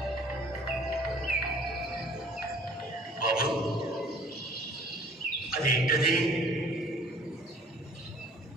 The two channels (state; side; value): normal; both; correlation 0.53